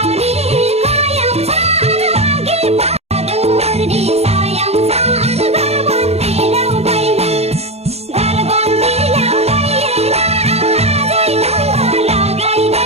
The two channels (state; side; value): late; left; 0.30 ms